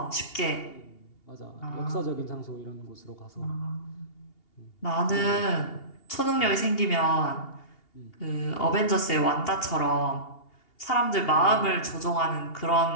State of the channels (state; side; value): late; right; 2.8 ms